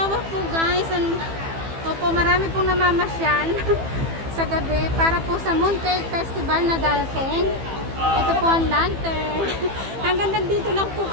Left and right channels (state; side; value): late; left; 15 ms